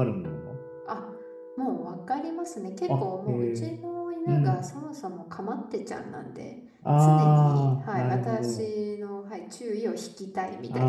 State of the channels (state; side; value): identical; both; correlation 1.00